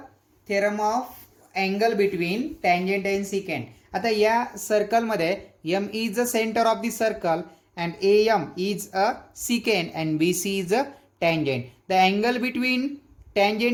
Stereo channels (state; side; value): identical; both; correlation 1.00